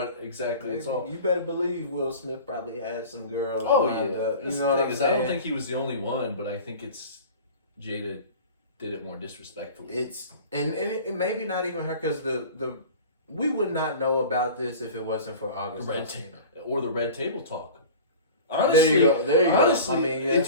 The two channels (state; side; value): inverted; both; correlation -0.38